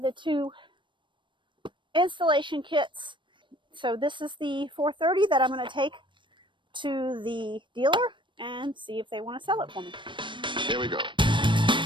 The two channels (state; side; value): late; left; 0.23 ms